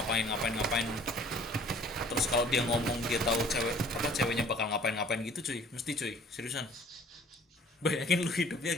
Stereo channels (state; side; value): normal; both; correlation 0.53